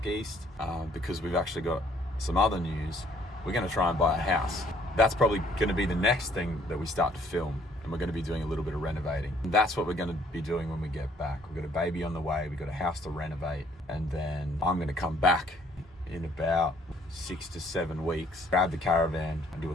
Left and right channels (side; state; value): both; normal; correlation 0.62